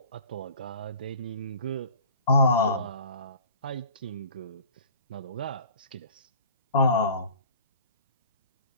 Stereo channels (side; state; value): both; inverted; correlation -0.45